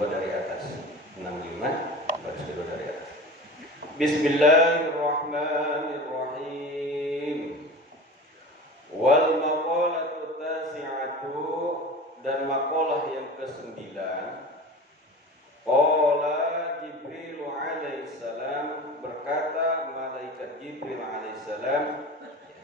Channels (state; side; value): normal; both; correlation 0.34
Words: dari atas. 65 baris kedua dari atas. Bismillahirrahmanirrahim. Wal maqalatu tasi'atu, dan maqalah yang ke-9. Qala Jibril alaihissalam, berkata malaikat Jibril alaihissalam.